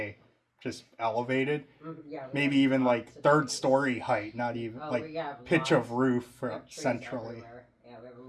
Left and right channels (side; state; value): both; identical; correlation 1.00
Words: just elevated, Yeah. we maybe have even lots like of 3rd trees. story height, not even Oh, like we have pitch lots of roof We for have trees centrally. everywhere. Yeah, we have